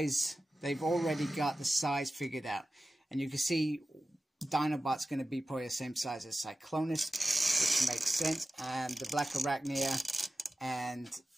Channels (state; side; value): normal; both; correlation 0.94